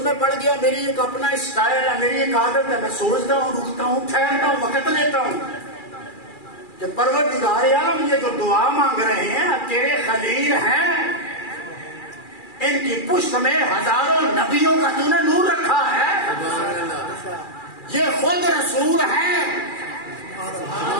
میں پڑ گیا، میری ایک اپنا اسٹائل ہے، میری ایک عادت ہے، میں سوچتا ہوں، رکتا ہوں، ٹھہرتا ہوں، وقت لیتا ہوں کہ پروردگار عالم یہ جو دعا مانگ رہے ہیں تیرے خلیل ہیں، ان کی پشت میں ہزاروں نبیوں کا تو نے نور رکھا ہے، یہ خود رسول ہیں،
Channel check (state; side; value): late; right; 2.4 ms